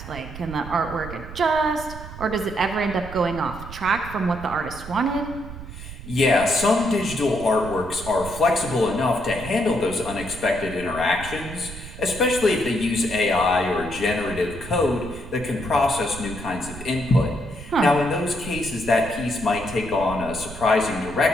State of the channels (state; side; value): noise; right; rumble, 12 dB below the sound